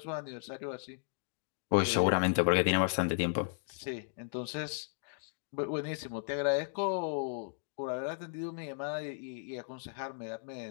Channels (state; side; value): silent; right; digital silence